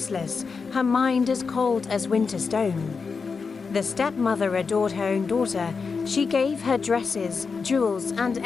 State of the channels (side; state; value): right; quieter; 5.1 dB